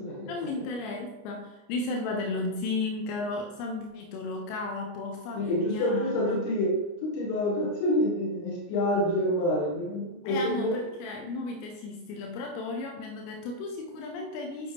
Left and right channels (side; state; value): right; late; 29 ms